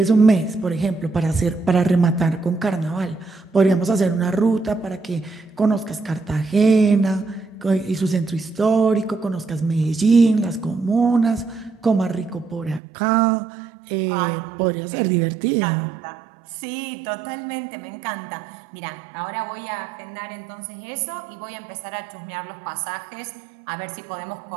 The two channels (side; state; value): left; drops out; at 12.8 s